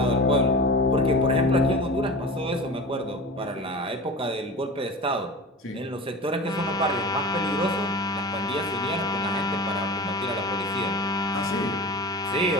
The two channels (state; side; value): normal; both; correlation 0.33